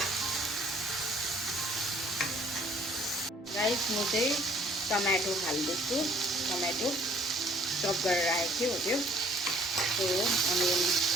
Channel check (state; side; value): normal; both; correlation 0.59